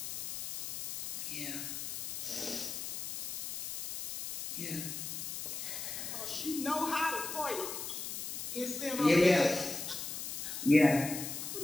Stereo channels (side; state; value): left; noise; hiss, 5 dB below the sound